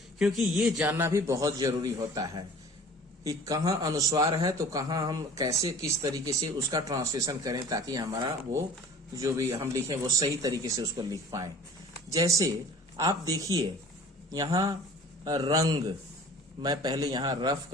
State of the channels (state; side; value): normal; both; correlation 0.45